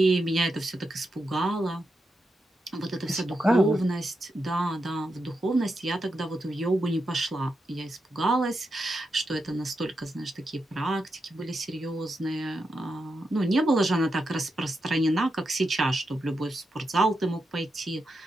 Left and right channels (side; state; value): both; normal; correlation 0.86